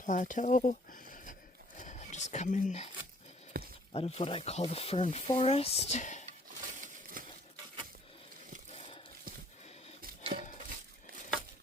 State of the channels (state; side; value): normal; both; correlation 0.60